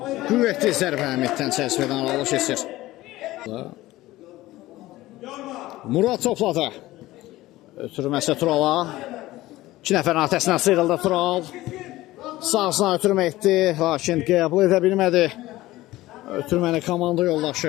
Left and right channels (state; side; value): quieter; right; 17.2 dB